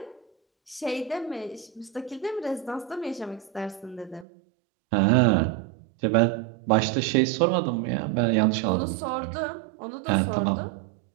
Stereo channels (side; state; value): left; drops out; at 4.2 s